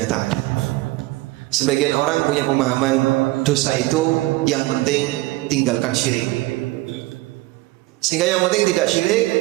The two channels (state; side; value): quieter; left; 19.9 dB